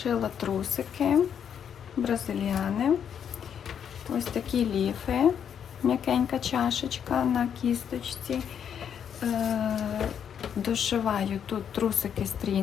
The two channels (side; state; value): right; quieter; 8.3 dB